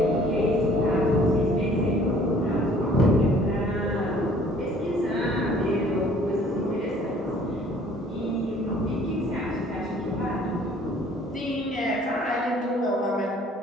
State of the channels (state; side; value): normal; both; correlation 0.56